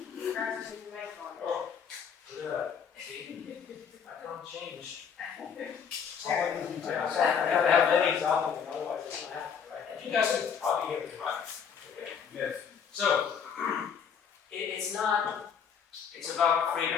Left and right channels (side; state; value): right; quieter; 7.0 dB